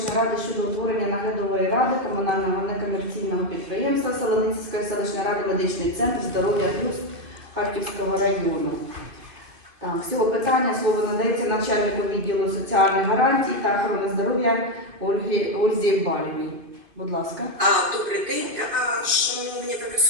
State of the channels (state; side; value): late; left; 2.5 ms